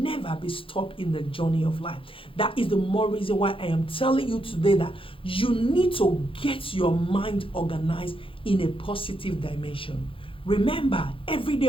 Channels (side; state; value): right; late; 0.26 ms